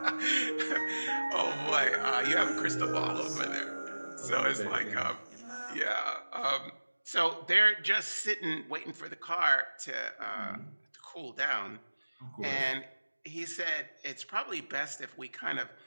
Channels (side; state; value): both; inverted; correlation -1.00